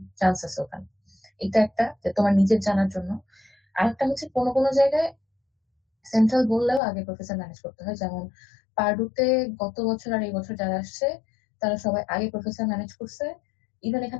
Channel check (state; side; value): drops out; right; at 6.8 s